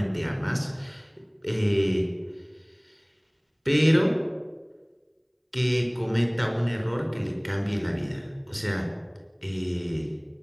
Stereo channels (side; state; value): both; identical; correlation 1.00